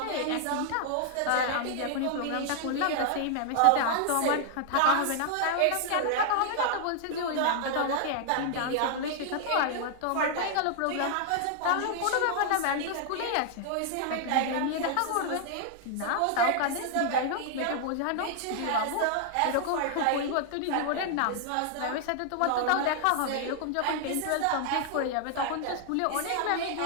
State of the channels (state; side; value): different; both; correlation 0.00